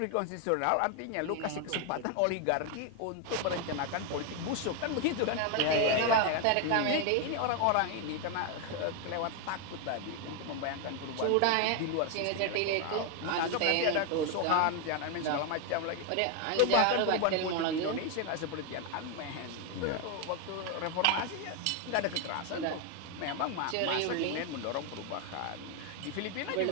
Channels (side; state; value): both; different; correlation 0.01